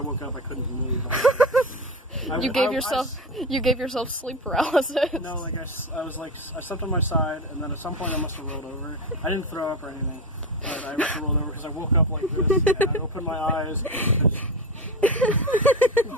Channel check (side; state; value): both; normal; correlation 0.21